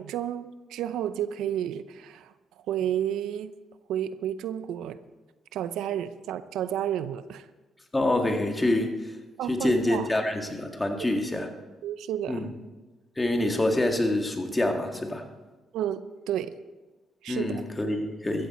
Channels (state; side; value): normal; both; correlation 0.77